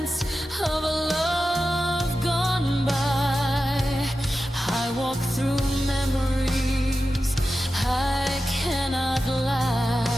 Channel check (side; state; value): both; normal; correlation 0.92